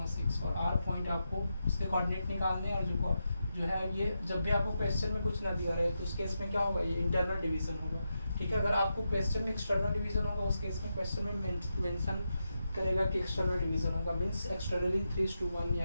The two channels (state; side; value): inverted; both; correlation -0.87